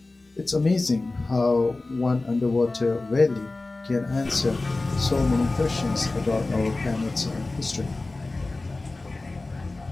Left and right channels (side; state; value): right; quieter; 3.2 dB